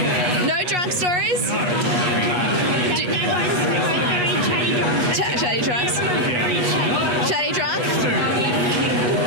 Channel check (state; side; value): late; left; 8.3 ms